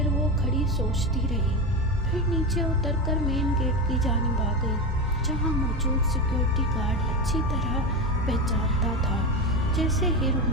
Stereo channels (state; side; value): normal; both; correlation 0.19